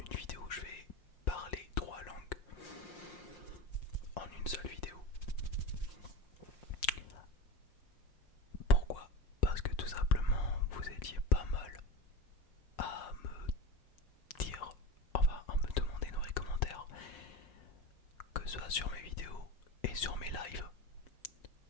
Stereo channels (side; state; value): right; late; 5.7 ms